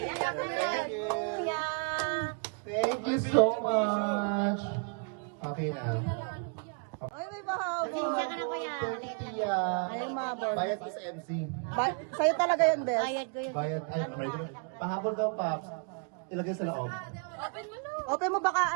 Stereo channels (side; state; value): left; quieter; 39.4 dB